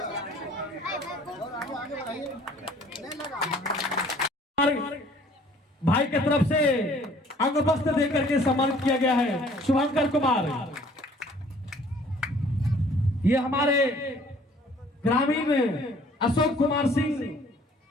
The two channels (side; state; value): both; normal; correlation 0.55